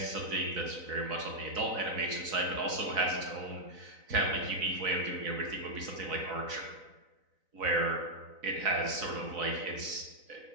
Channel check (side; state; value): left; late; 4.0 ms